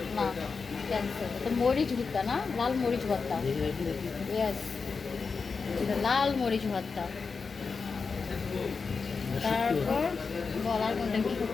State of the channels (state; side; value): quieter; right; 4.9 dB